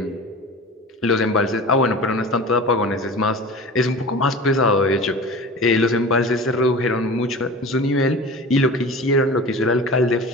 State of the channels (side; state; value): both; normal; correlation 0.36